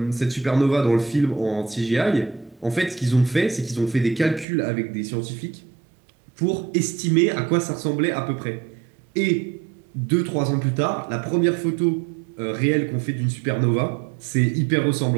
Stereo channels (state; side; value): drops out; left; at 4.5 s